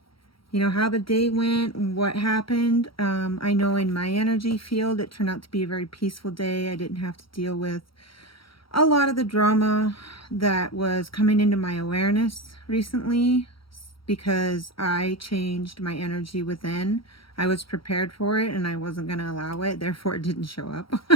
how the day went and what happened. I know in my energy field it turned out to be a very peaceful day. I didn't have to deal with a lot of the drama that was coming into my awareness recently because I changed my energy within. I was prepared for it and I wasn't going to allow it, therefore it didn't show up.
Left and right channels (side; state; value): right; late; 0.74 ms